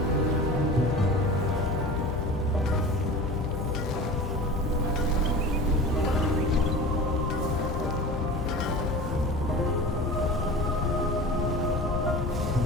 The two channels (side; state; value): both; normal; correlation 0.35